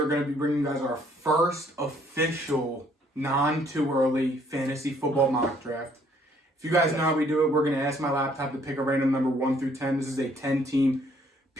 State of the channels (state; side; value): normal; both; correlation 0.64